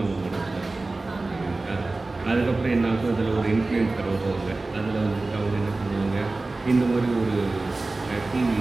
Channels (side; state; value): left; quieter; 3.3 dB